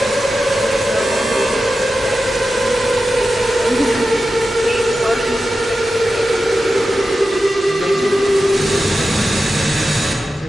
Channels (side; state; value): both; normal; correlation 0.92